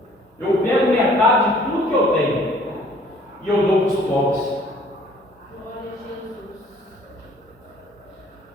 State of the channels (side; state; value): both; normal; correlation 0.56